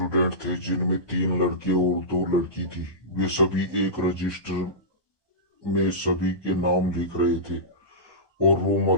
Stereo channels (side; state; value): right; late; 1.2 ms